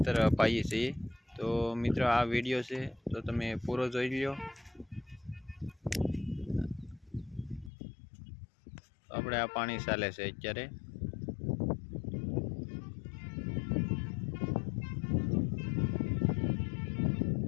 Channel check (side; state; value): right; drops out; at 7.7 s